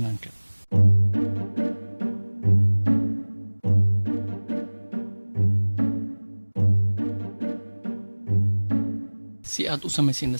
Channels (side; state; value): both; inverted; correlation -1.00